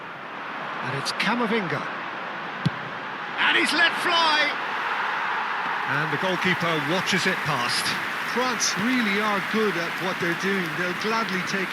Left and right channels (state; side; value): identical; both; correlation 1.00